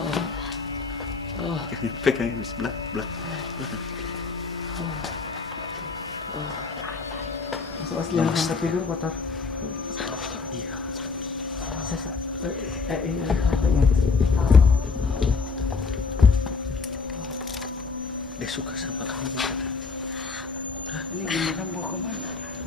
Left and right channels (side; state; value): right; quieter; 4.7 dB